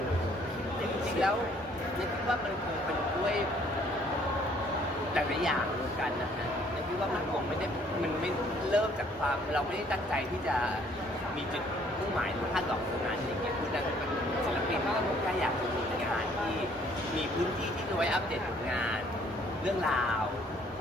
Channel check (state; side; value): normal; both; correlation 0.61